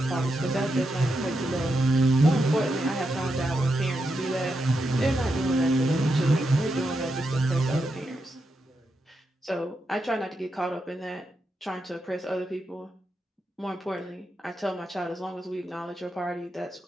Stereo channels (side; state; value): both; normal; correlation 0.85